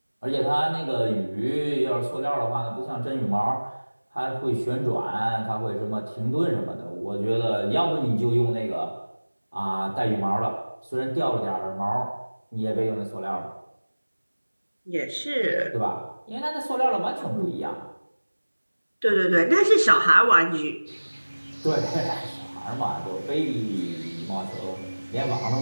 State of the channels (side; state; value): both; inverted; correlation -1.00